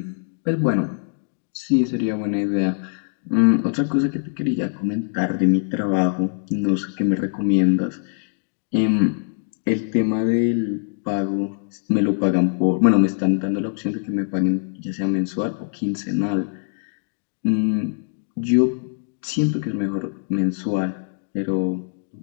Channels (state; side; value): silent; right; digital silence